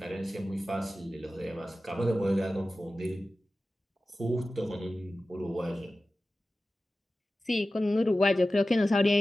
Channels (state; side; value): normal; both; correlation 0.95